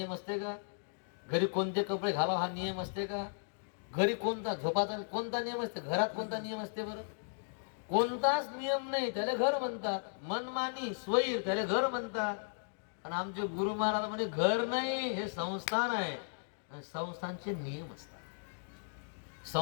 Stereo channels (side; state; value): right; silent; digital silence